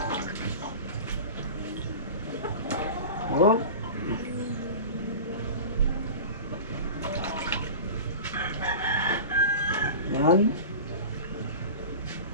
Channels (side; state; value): both; inverted; correlation -0.33